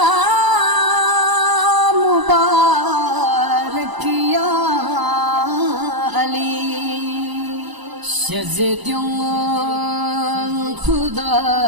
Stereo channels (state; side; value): late; left; 1.0 ms